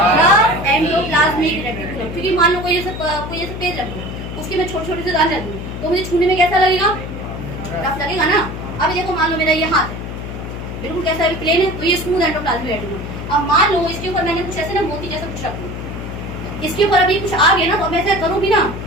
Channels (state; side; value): noise; left; hum, 8 dB below the sound